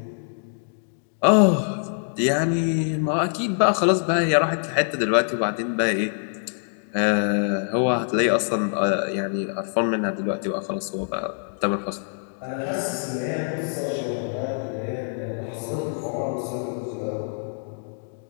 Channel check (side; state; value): right; silent; digital silence